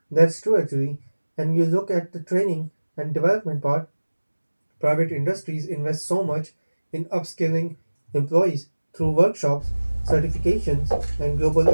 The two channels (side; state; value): both; inverted; correlation -1.00